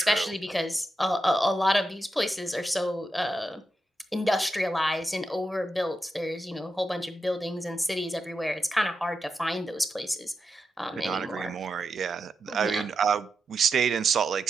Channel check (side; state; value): both; normal; correlation 0.87